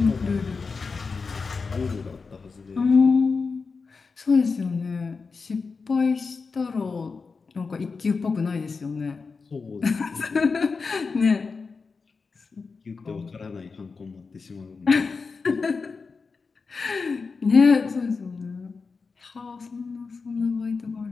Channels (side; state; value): right; quieter; 4.7 dB